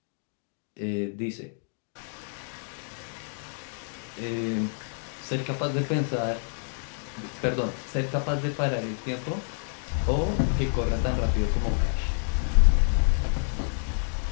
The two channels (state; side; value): silent; right; 59 dB below the other